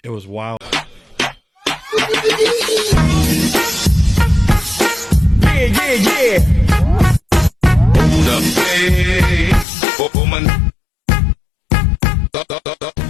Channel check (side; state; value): right; drops out; at 9.7 s